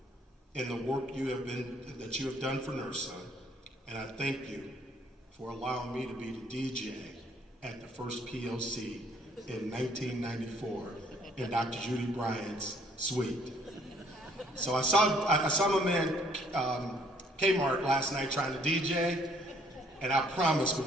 in the work that you have done for NIRSA, and I thank you for allowing me to be the DJ at the first POC in 1994 in Dr. Judy Bryant's suite. So I saw my man Kmart last night trying to DJ, and I promise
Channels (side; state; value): both; normal; correlation 0.63